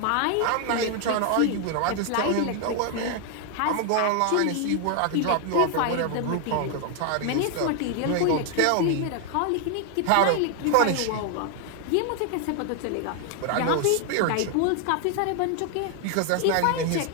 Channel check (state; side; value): different; both; correlation 0.00